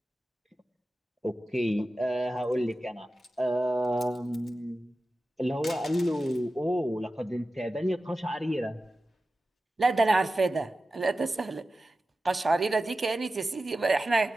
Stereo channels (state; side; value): normal; both; correlation 0.94